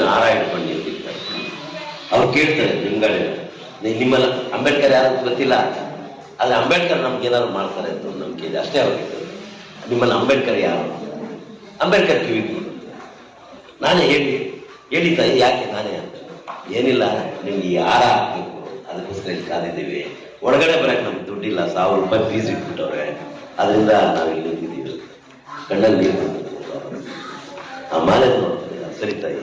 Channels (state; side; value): identical; both; correlation 1.00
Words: ಹಾರ ಇಟ್ಕೊಂಡು ನಿಂತಿರ್ತಾರೆ. ಅವ್ರು ಕೇಳ್ತಾರೆ ಲಿಂಗಾಳ, ನಿಮ್ಮಲ್ಲ ಅಂಬೇಡ್ಕರ್ ಯಾರು ಗೊತ್ತಿಲ್ಲ, ಆದ್ರೆ ಅಂಬೇಡ್ಕರ್ ನಮ್ಗೆ ಏನಾದ್ರು ಮಾಡ್ತಾರೆ ಅಂತ ನಂಬಿಕೆ ಇದೆ ಅಷ್ಟೇ. ಅವ್ರಿಗೆ ನಿಮ್ಮಲ್ಲಿ ಅಂಬೇಡ್ಕರ್ ಯಾರು? ಅಂಬೇಡ್ಕರ್ ಕಿವಿಗೆ ನಾನೇ ಹೇಳಿ ತಾಯಿ, ಯಾಕೆ ನಾನೇ ಅಂತ? ಏನಿಲ್ಲ, ನಿಮ್ಗೆ ಈ ಹಾರ ಹಾಕ್ಬೇಕು, ಅದಕ್ಕೋಸ್ಕರ ಇಲ್ಲಿ ಕಾದಿದ್ದೀವಿ. ಒಳಗಡೆ ಬರಕ್ಕೆ ನಮ್ಗೆ ದುಡ್ಡಿಲ್ಲ, 1000 ರೂಪಾಯಿ ಫೀಸ್ ಇಟ್ಬಿಟ್ಟವ್ರೆ, ಅದರಿಂದ ನಾವು ಇಲ್ಲಿ ನಿಂತಿದ್ದೀವಿ. ಕಣ್ಣಲ್ಲಿ ನೀರು ಬಂದಿದ್ದೀವಿ. ಆ ಮಾಲೆ ನೋಡ್ತಾರೆ. ಸರಿ ತಾಯಿ,